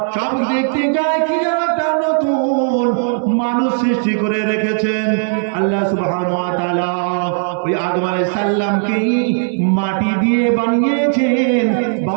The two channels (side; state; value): left; silent; digital silence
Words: সব দেখতে যায় কি একটা নতুন মানুষ সৃষ্টি করে রেখেছেন। আল্লাহ সুবহানাহু ওয়া তাআলা ওই আদম আলাইহিস সালামকে মাটি দিয়ে বানিয়েছেন।